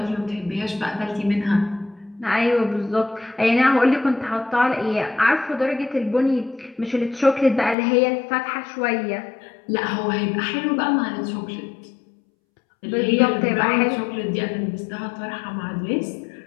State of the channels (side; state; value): right; drops out; at 7.8 s